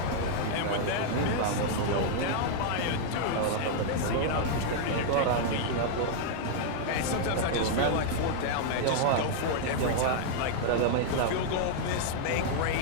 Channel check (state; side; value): different; both; correlation -0.01